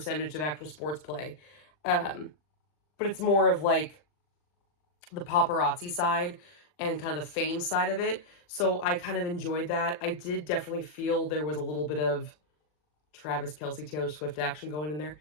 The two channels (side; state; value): right; late; 40 ms